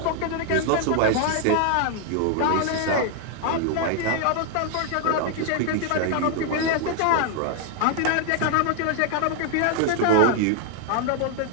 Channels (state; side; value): different; both; correlation 0.00